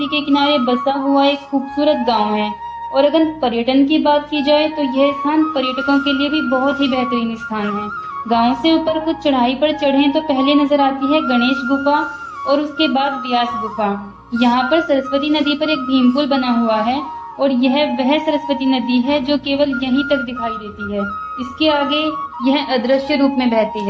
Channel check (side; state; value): both; identical; correlation 1.00